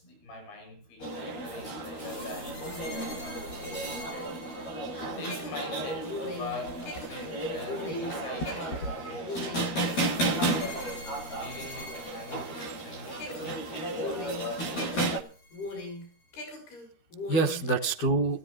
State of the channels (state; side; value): late; right; 13 ms